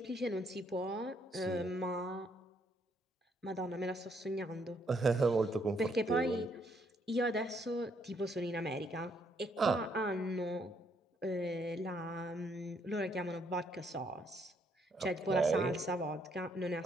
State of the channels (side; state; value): both; normal; correlation 0.71